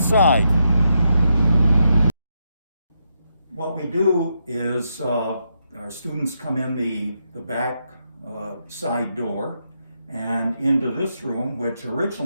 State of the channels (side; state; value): both; inverted; correlation -0.82